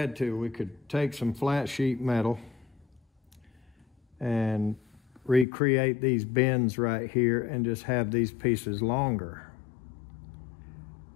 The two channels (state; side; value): drops out; right; at 5.5 s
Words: to, we could take some flat sheet metal and recreate these bends right here and just have these pieces longer.